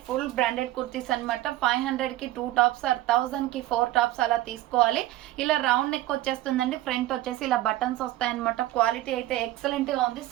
ఫుల్ బ్రాండెడ్ కుర్తీస్ అనమాట. 500 కి 2 టాప్స్ ఆర్ 1000 కి 4 టాప్స్ అలా తీసుకోవాలి. ఇలా రౌండ్ నెక్ వచ్చేస్తుందండి. ఫ్రంట్ వచ్చేసి ఇలా బటన్స్ వస్తాయన్నమాట. క్వాలిటీ అయితే ఎక్సలెంట్ గా ఉంది.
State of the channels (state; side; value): quieter; left; 15.8 dB